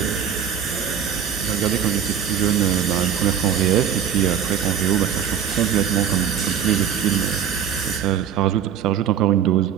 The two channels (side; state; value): left; quieter; 8.4 dB